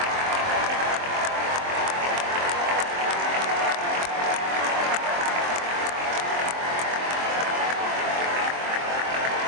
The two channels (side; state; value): left; late; 23 ms